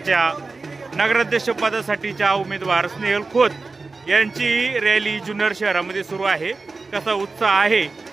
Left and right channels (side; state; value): left; quieter; 3.9 dB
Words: नगराध्यक्ष पदासाठीच्या उमेदवार स्नेहल खोत यांची रॅली जुन्नर शहरामध्ये सुरू आहे। कसा उत्साह आहे